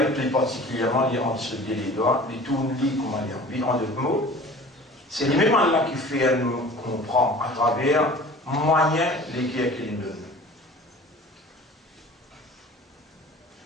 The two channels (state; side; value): normal; both; correlation 0.43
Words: plus particulièrement entre ce les doigts, les tout comment dire, en d'autres mots. C'est lui-même Allah qui fait nous comprendre à travers moyens lesquels qu'il nous donne.